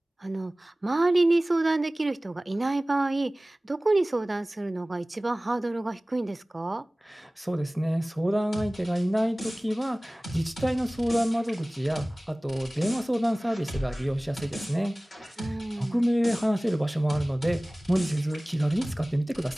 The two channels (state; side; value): normal; both; correlation 0.98